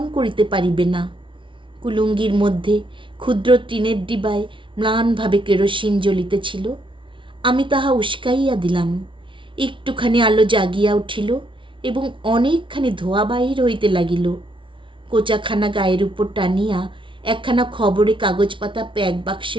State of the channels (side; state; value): left; late; 0.25 ms